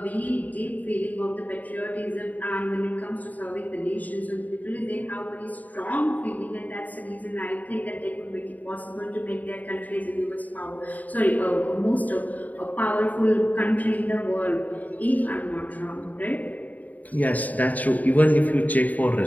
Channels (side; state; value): right; late; 0.076 ms